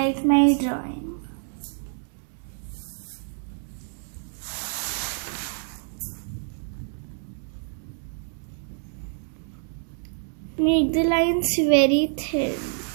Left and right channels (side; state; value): left; silent; 60 dB below the other